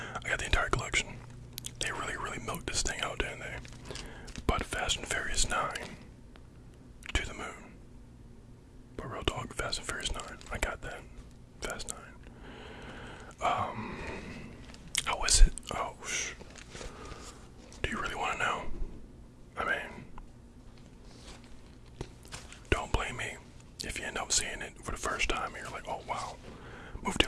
I got the entire collection. They really milked this thing out, didn't they? But Fast and Furious 9, to the moon. But real talk, Fast and Furious 9, I got that. Fast 9. How is it? Oh, do you really want to know? I mean, don't blame me if you end up seeing it for the first time and you're like, oh wow, movie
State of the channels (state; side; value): identical; both; correlation 1.00